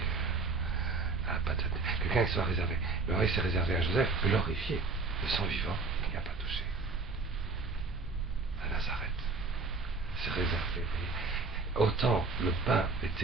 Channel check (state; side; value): quieter; left; 3.9 dB